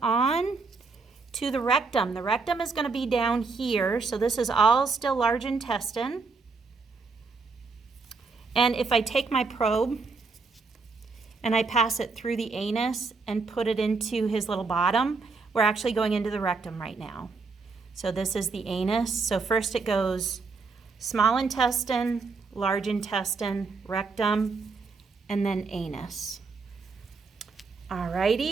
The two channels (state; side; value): quieter; left; 4.4 dB